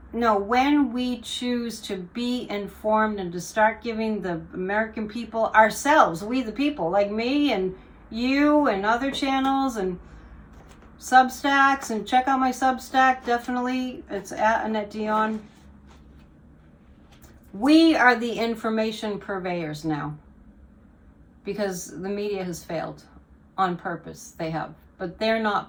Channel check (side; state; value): both; identical; correlation 1.00